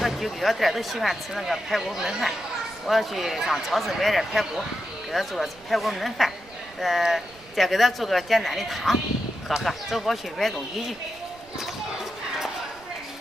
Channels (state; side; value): noise; right; rumble, 24 dB below the sound